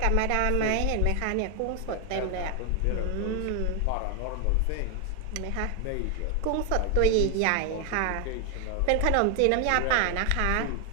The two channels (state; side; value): different; both; correlation 0.01